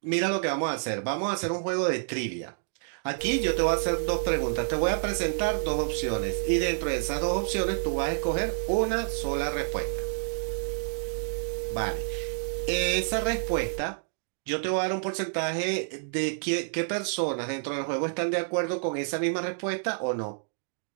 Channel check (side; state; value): left; silent; digital silence